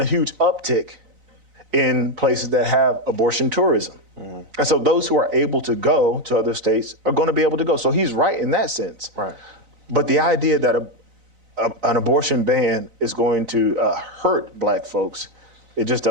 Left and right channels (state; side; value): late; left; 4.0 ms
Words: a huge uptick in places that have abortion tourism. Mm-hmm. And so those who are able to go to other states are going to be able to go. So he's right in that sense. Right. But the idea that an abortion ban is going to hurt black folks, it just